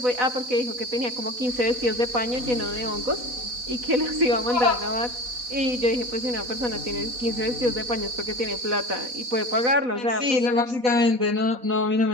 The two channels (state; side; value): late; left; 4.1 ms